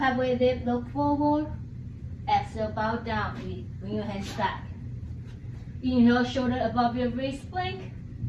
dip, look forward. Exhale, bow down. Bring your hands back. Inhale, shoulder above your wrist plank.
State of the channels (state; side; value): identical; both; correlation 1.00